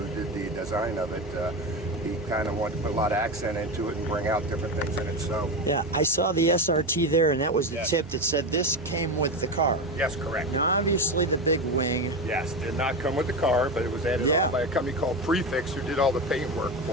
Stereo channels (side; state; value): both; normal; correlation 0.18